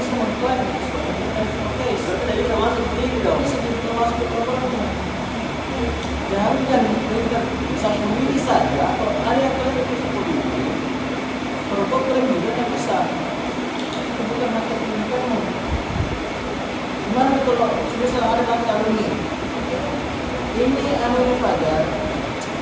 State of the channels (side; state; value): both; identical; correlation 1.00